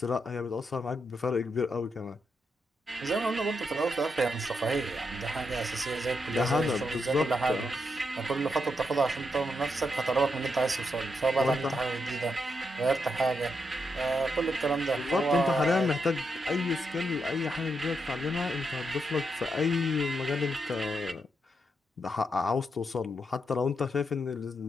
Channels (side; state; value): both; normal; correlation 0.82